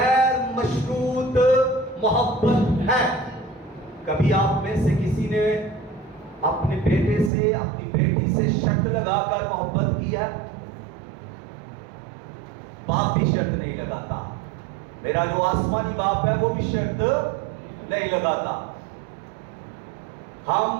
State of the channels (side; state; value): left; drops out; at 7.3 s